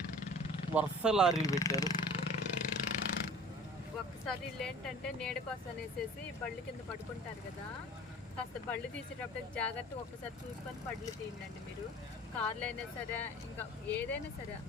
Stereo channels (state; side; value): normal; both; correlation 0.44